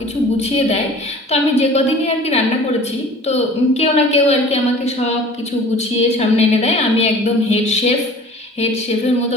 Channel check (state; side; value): normal; both; correlation 0.45